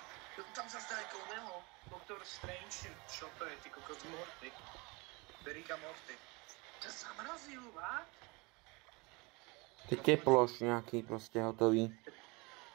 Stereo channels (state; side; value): quieter; left; 26.7 dB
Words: Tam sa zdá ako neho, Doktor Strange, čo to je, ty kokos Morty. Berika Morty. To zamrazil, vá? Ty teploš nejaký proste hotový.